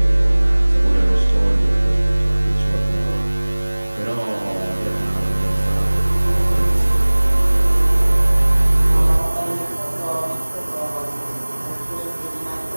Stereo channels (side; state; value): both; inverted; correlation -1.00